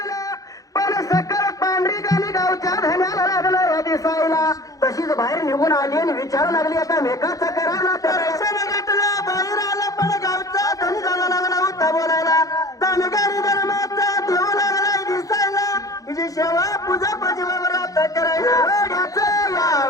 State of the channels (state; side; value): late; right; 0.17 ms